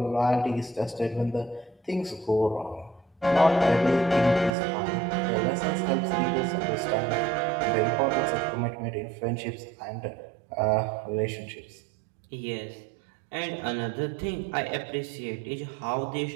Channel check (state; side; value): drops out; left; at 4.5 s